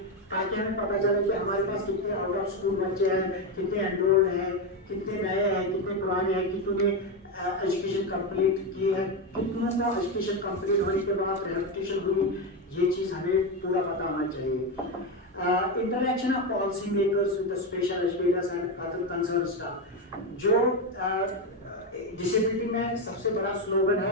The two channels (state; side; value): normal; both; correlation 0.10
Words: ताकि हमें पता चले कि हमारे पास कितने आउट ऑफ स्कूल बच्चे हैं, कितने एनरोल्ड हैं, कितने नए हैं, कितने पुराने हैं, कितने एजुकेशन कंप्लीट की है, कितनों को एजुकेशन कंप्लीट होने के बाद रिहैबिलिटेशन हुई, ये चीज़ हमें पूरा पता होना चाहिए। Interaction of policy makers with the special educators and other concerned staff, जो डिसेबिलिटी में सबसे बड़ा स्लोगन